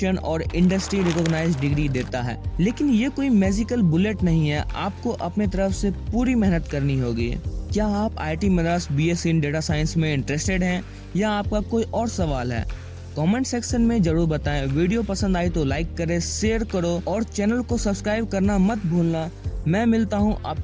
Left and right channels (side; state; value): both; identical; correlation 1.00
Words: और इंडस्ट्री रिकॉग्नाइज्ड डिग्री देता है। लेकिन ये कोई मैजिकल बुलेट नहीं है, आपको अपने तरफ से पूरी मेहनत करनी होगी। क्या आप IIT Madras BSc in data science में इंटरेस्टेड हैं या आपका कोई और सवाल है? कमेंट सेक्शन में जरूर बताएं। वीडियो पसंद आई तो लाइक करें, शेयर करो और चैनल को सब्सक्राइब करना मत भूलना। मैं मिलता हूं